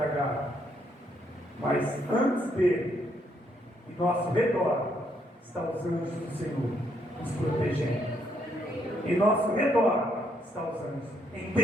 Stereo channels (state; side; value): normal; both; correlation 0.73